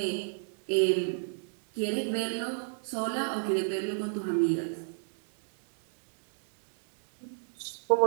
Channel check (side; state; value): left; silent; digital silence